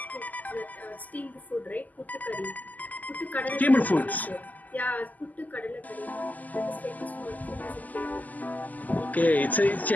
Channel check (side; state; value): right; late; 0.080 ms